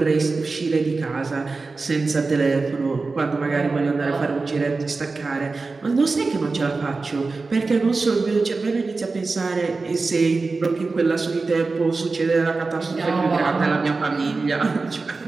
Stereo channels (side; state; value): left; quieter; 3.9 dB